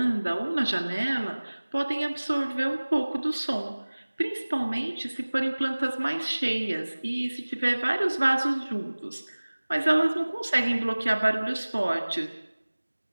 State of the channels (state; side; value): inverted; both; correlation -1.00